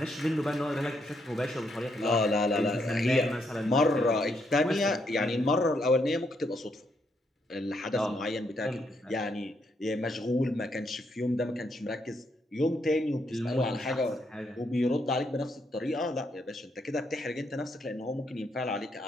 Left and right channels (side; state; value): both; normal; correlation 0.76